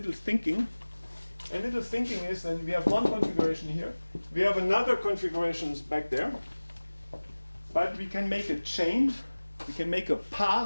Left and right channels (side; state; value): both; inverted; correlation -1.00